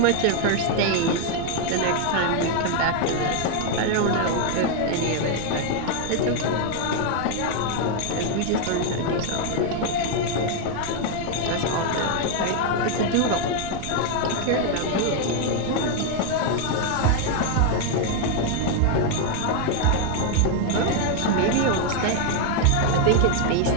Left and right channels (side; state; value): both; different; correlation 0.00